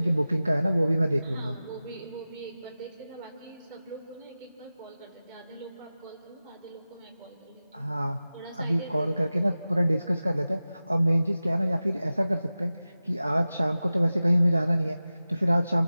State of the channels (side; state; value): both; inverted; correlation -0.95